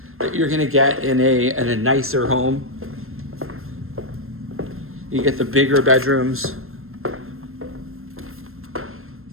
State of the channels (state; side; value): late; left; 0.61 ms